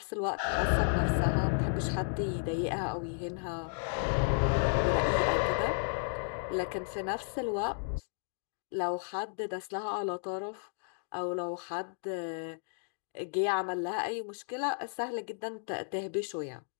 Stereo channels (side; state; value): right; silent; digital silence